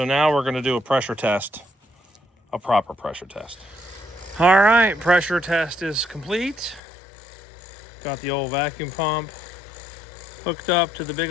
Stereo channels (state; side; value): drops out; right; at 6.8 s